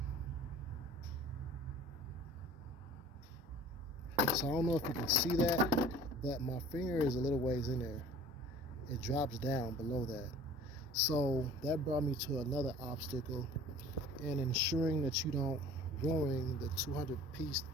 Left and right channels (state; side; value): normal; both; correlation 0.46